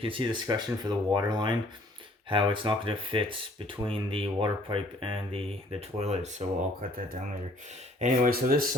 see the escutcheon for the water line, how it's not going to fit between the water pipe and the toilet, so I'll cut that down later. Anyway, so this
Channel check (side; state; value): both; normal; correlation 0.59